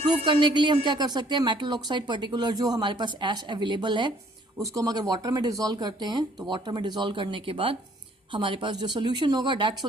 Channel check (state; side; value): normal; both; correlation 0.61